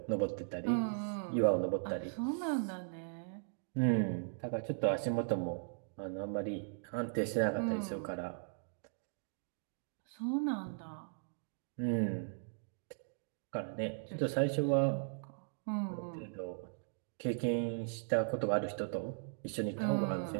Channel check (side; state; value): left; silent; digital silence